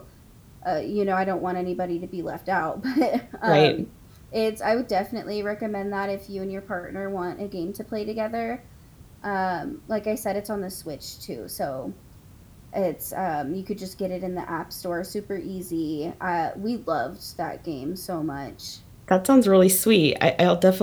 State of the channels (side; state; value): both; identical; correlation 1.00